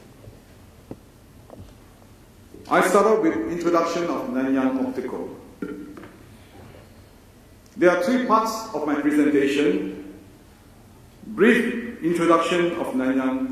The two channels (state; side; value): identical; both; correlation 1.00